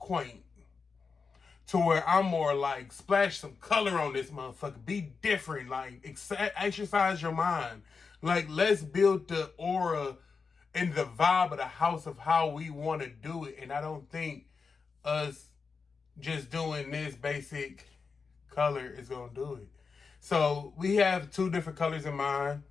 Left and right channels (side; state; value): right; quieter; 5.0 dB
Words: To where I'm more like, splash some color on this motherfucker. Be different. Like, exercise your mind. Like, let's build the aura and the vibe of the house of how we want to do it. And I don't think us just doing this basic color is going to do it. So we have 2 different colors in mind.